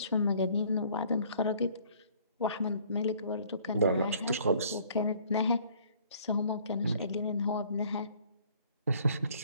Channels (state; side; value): inverted; both; correlation -0.57